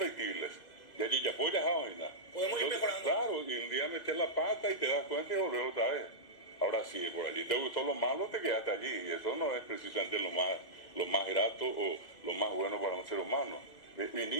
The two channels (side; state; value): right; late; 2.0 ms